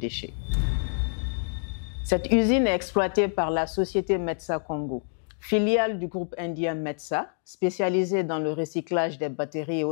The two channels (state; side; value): silent; right; digital silence